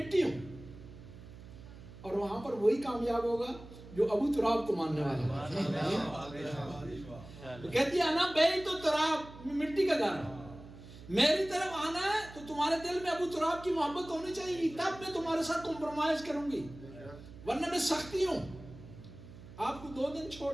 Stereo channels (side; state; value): right; noise; hum, 17 dB below the sound